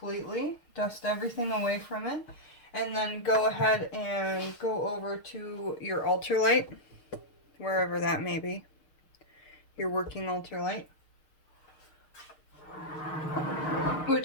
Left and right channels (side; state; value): right; late; 6.5 ms